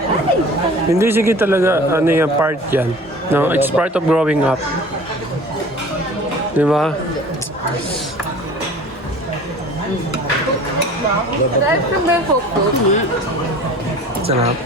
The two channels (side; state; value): both; normal; correlation 0.44